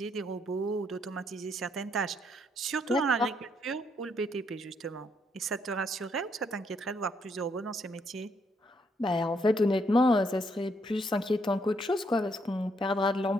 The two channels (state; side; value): normal; both; correlation 0.73